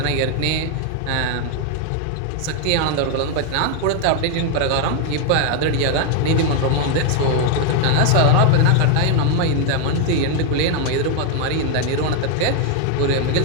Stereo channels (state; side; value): different; both; correlation 0.01